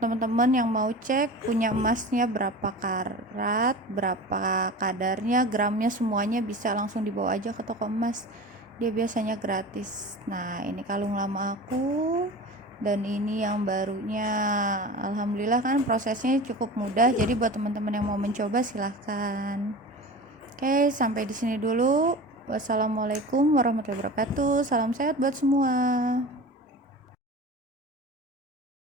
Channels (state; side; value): normal; both; correlation 0.34